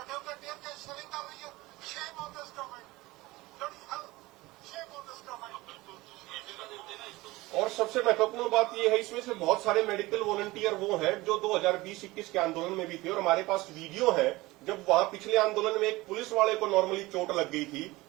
ढेर कैश सेलिंग कर रही है। Shame on this government. और सबसे महत्वपूर्ण बात यह है, इसमें से बहुत सारे मेडिकल वॉलंटियर वो हैं जो 2020-21 के आंदोलन में भी थे, और हमारे पास वीडियो है जब वहां पिछले आंदोलन में एक पुलिस वाले को नॉर्मली चोट लग गई थी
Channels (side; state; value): left; quieter; 20.3 dB